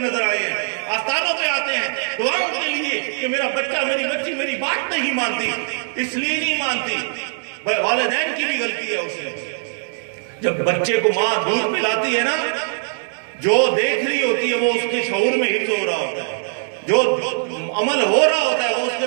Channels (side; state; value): left; silent; digital silence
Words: آئے ہیں. آستانوں پہ آتے ہیں دعاؤں کے لیے کہ میرا بچہ میری بچی میری بات نہیں مانتی, اس لیے نہیں مانتی. والدین کی بھی غلطی ہے اس میں. جب بچے کو ماں دودھ پلاتی ہے نا, جو دیکھ رہی ہوتی ہے وہ اس کے شعور میں حفظ ہو رہا ہوتا ہے, جو عمل ہو رہا ہوتا ہے وہ اس کے